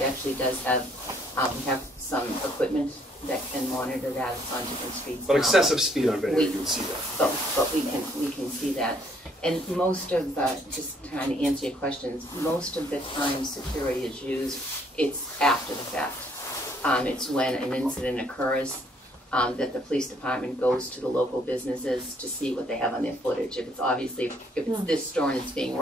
actually does have some equipment that can monitor that. It's on different streets. But now, excessive speed on Van Air, we- you would see that. But we can see that. And most of the, just trying to answer your questions, most of the time security is used, it's after the fact. It's when an incident occurs, that the police department goes to the local businesses to see what they have on their footage. If it's obviously, if it's this store and it's being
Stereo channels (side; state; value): both; normal; correlation 0.66